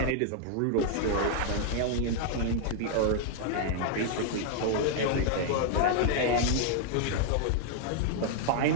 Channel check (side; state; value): both; different; correlation 0.00